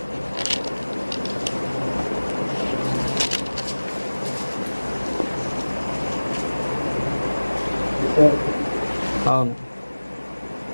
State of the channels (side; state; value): both; inverted; correlation -1.00